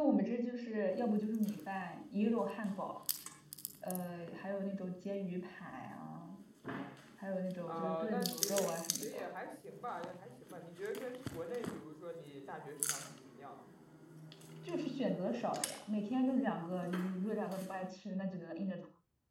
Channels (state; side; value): identical; both; correlation 1.00